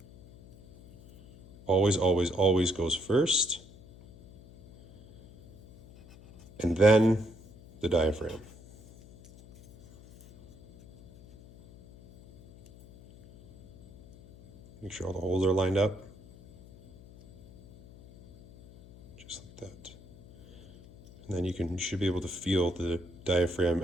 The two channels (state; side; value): noise; left; hum, 22 dB below the sound